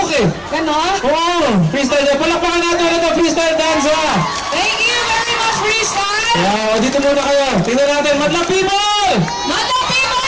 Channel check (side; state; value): both; identical; correlation 1.00